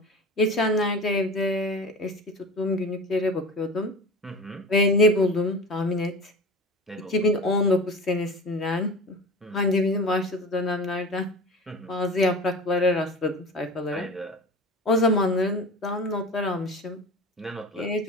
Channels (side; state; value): both; normal; correlation 0.34